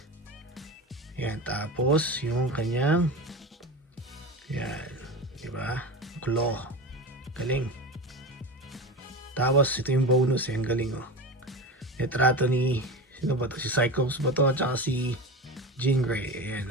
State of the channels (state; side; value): normal; both; correlation 0.26